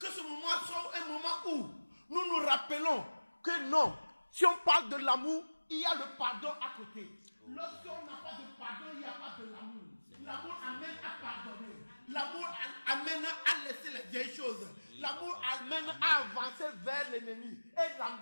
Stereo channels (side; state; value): both; inverted; correlation -1.00